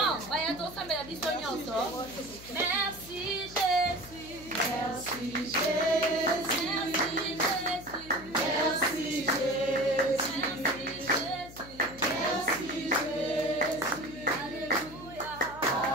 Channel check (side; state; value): left; noise; hum, 17 dB below the sound